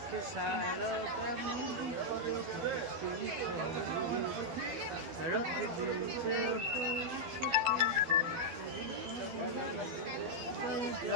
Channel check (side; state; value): left; late; 12 ms